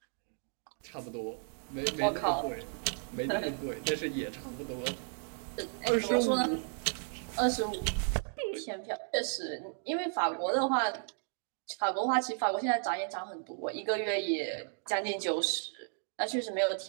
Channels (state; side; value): silent; left; 55 dB below the other